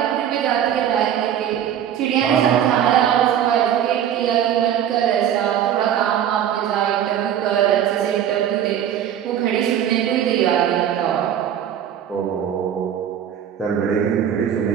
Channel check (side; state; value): left; quieter; 9.9 dB